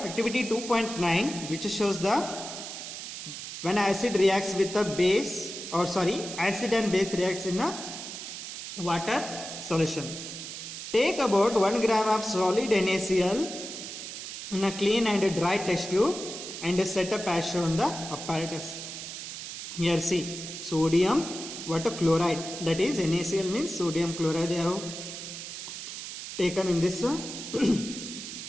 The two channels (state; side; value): noise; right; hiss, 9 dB below the sound